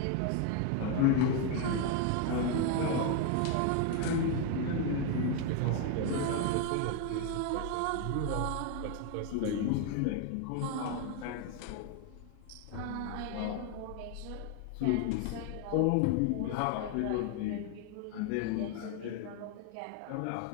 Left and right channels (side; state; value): both; different; correlation 0.01